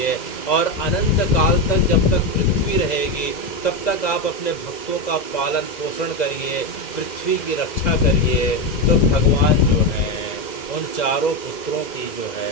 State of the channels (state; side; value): late; right; 2.0 ms